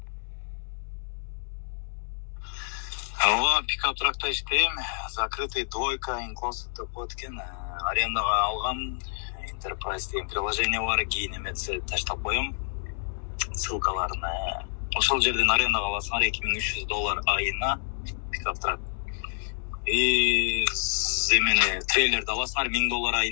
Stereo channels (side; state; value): right; silent; digital silence